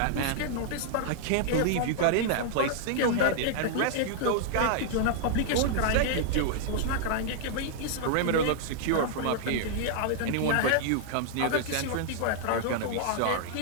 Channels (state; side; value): different; both; correlation -0.01